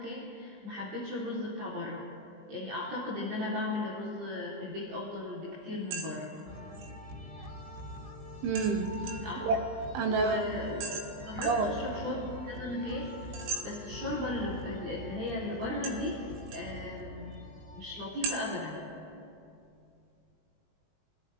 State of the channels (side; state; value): left; late; 20 ms